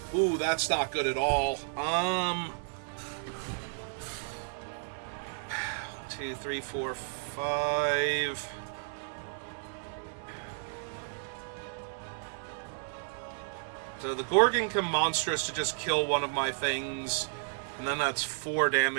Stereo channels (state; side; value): silent; left; digital silence